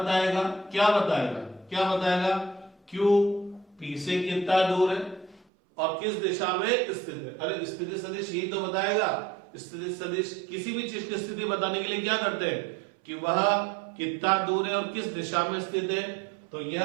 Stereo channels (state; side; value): drops out; left; at 5.5 s